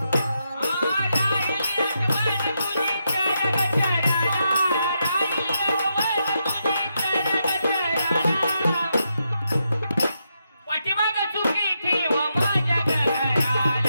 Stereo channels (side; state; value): both; inverted; correlation -0.83